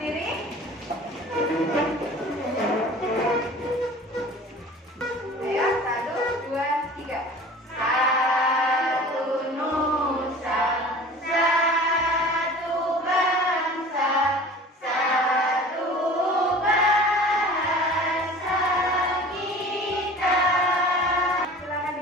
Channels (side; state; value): both; normal; correlation 0.42